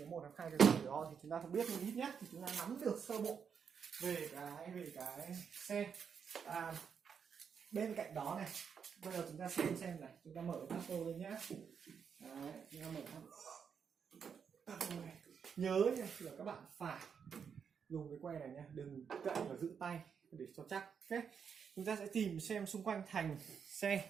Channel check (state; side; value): quieter; left; 6.8 dB